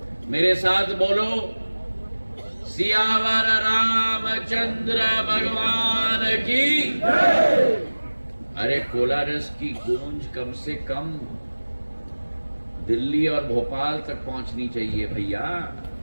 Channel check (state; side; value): inverted; both; correlation -1.00